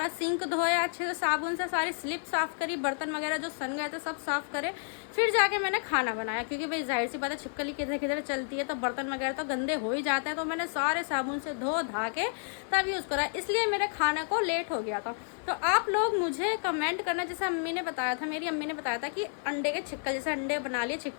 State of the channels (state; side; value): silent; right; 55 dB below the other